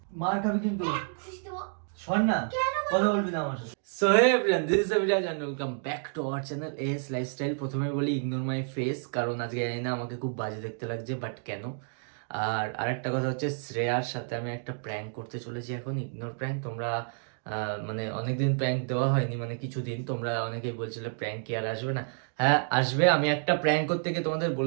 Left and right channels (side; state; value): left; silent; 58 dB below the other